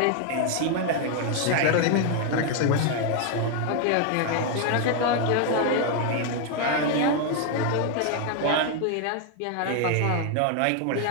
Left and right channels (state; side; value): different; both; correlation 0.00